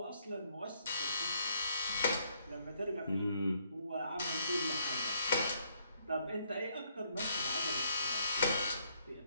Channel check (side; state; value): both; inverted; correlation -0.71